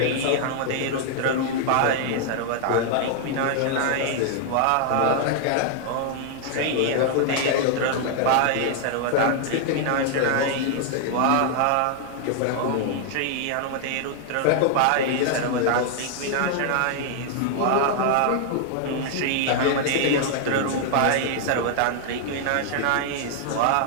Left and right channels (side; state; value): both; different; correlation 0.00